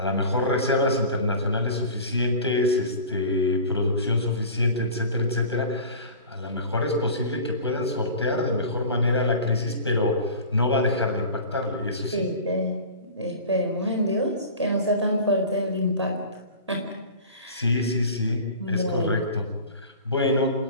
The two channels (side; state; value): both; inverted; correlation -0.37